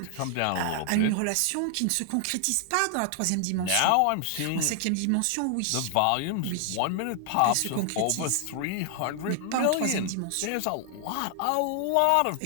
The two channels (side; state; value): both; different; correlation 0.00